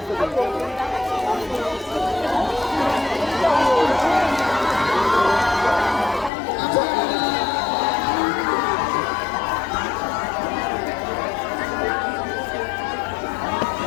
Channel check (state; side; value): drops out; right; at 6.3 s